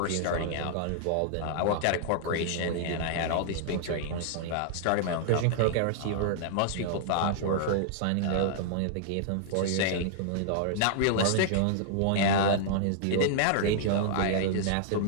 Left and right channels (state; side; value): different; both; correlation -0.01